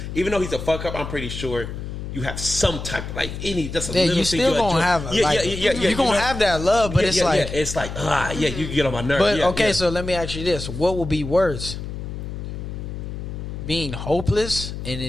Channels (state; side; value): noise; left; hum, 7 dB below the sound